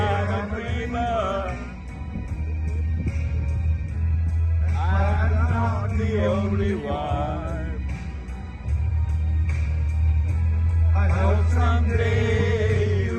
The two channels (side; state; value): both; identical; correlation 1.00